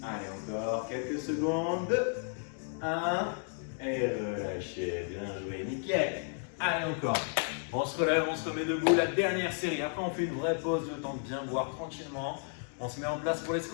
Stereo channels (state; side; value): silent; right; 56 dB below the other